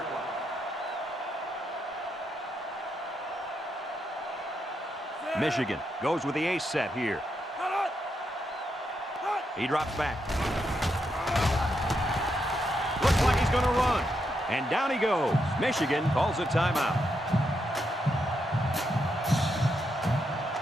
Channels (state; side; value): normal; both; correlation 0.81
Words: line. Michigan goes with the ace set here. He drops back. Looks like he's going to run. And down he goes. Michigan calls a timeout.